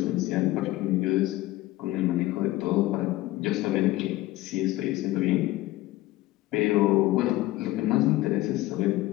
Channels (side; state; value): right; quieter; 17.2 dB